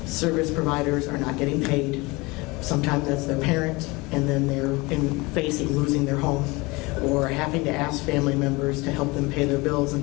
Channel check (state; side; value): quieter; right; 24.2 dB